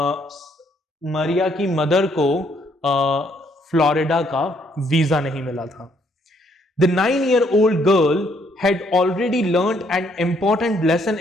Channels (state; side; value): normal; both; correlation 0.69